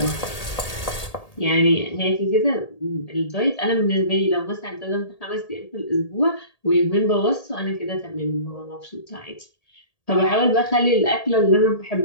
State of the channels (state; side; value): late; right; 1.8 ms